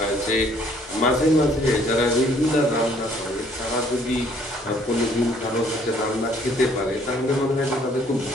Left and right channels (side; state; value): both; normal; correlation 0.61